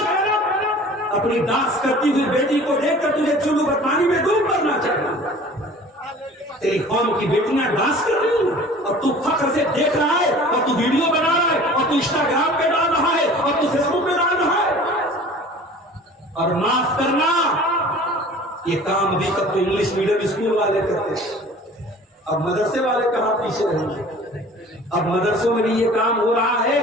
اپنی ڈانس کرتی ہوئی بیٹی کو دیکھ کر تجھے چلو پانی میں ڈوب مرنا چاہیے. تیری قوم کی بیٹیاں ڈانس کر رہی ہیں اور تو فخر سے دیکھ رہا ہے اور تو ویڈیو بنا رہا ہے اور تو انسٹاگرام پہ ڈال رہا ہے اور تو فیس بک پہ ڈال رہا ہے. اور معاف کرنا، یہ کام ابھی تک تو انگلش میڈیم اسکول والے کرتے ہیں، اب مدرسے والے کہاں پیچھے رہیں گے. اب مدرسوں میں بھی یہ کام ہو رہا ہے،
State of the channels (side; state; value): both; normal; correlation 0.45